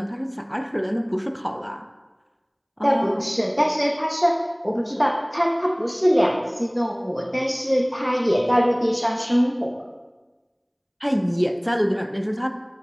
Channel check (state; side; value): identical; both; correlation 1.00